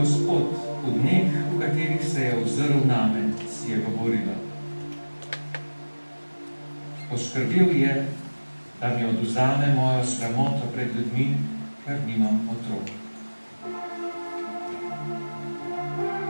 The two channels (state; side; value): inverted; both; correlation -1.00